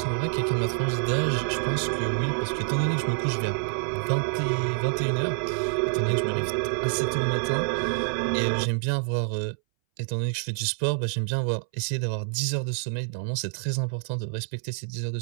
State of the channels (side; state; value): left; silent; 60 dB below the other